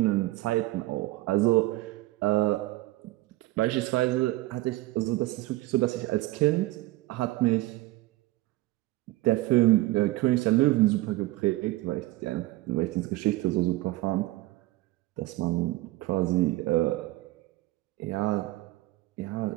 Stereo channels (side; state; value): left; quieter; 18.2 dB